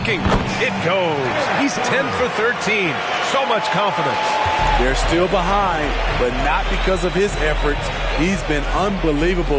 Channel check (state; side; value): identical; both; correlation 1.00